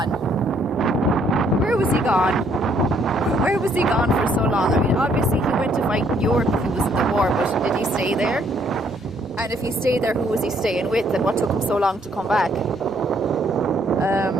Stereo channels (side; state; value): both; normal; correlation 0.67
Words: Where was he gone? Where was he gone for so long? I mean, obviously, he went to fight in Europe if he was in the war, but did he stay there? And if he stayed there, who was he staying with, and what took him so long to come back?